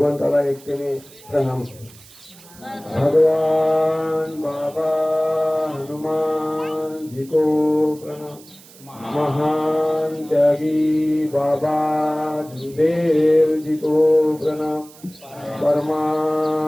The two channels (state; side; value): noise; right; hiss, 22 dB below the sound